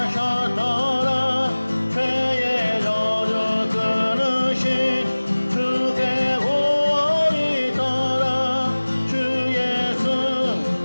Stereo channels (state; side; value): inverted; both; correlation -1.00